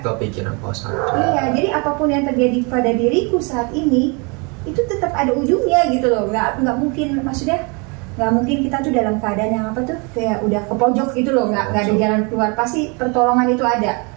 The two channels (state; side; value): quieter; left; 31.6 dB